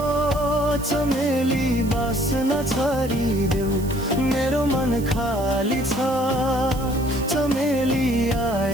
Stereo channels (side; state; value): right; noise; hiss, 17 dB below the sound